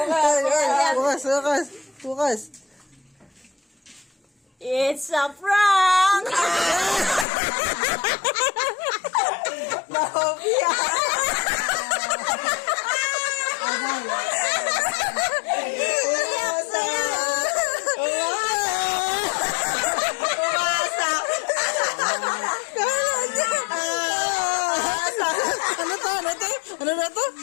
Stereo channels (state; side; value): drops out; right; at 7.2 s